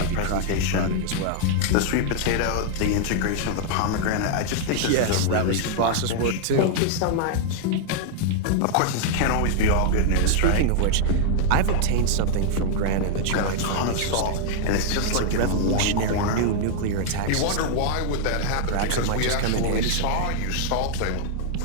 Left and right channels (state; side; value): different; both; correlation -0.01